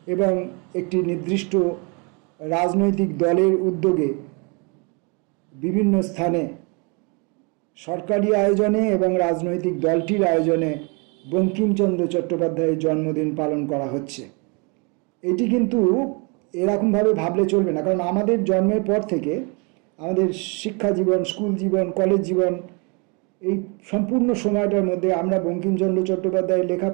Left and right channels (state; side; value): quieter; left; 32.6 dB